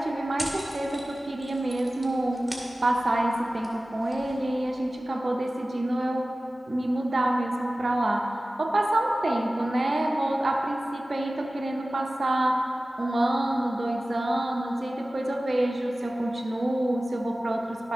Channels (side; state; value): both; normal; correlation 0.96